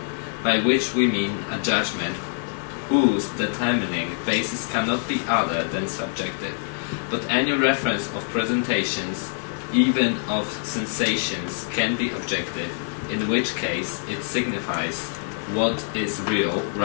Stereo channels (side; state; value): right; silent; 62 dB below the other